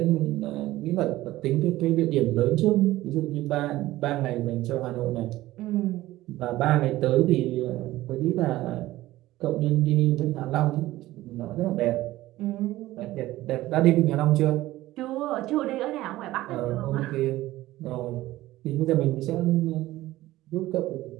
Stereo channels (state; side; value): quieter; left; 16.5 dB